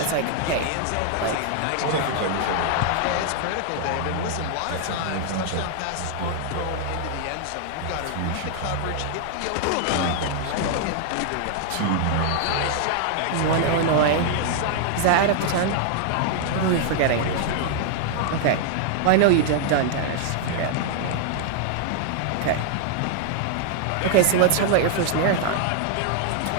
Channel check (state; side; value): different; both; correlation 0.00